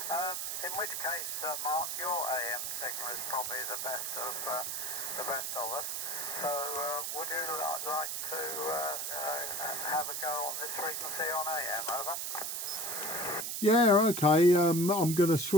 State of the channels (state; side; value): noise; right; hiss, 2 dB below the sound